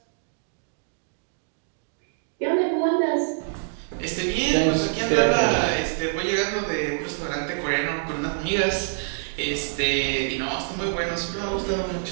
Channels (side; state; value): left; silent; digital silence